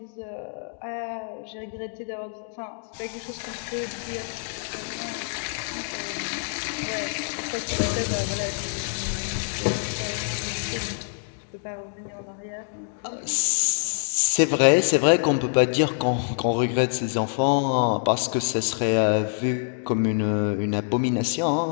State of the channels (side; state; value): right; silent; digital silence